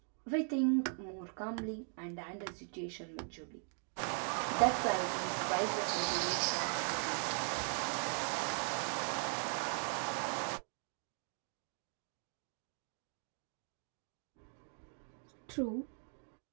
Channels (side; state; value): left; silent; 51 dB below the other